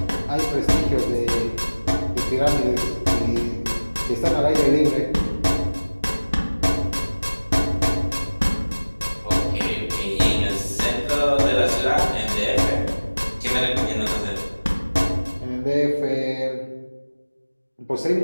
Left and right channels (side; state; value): both; inverted; correlation -1.00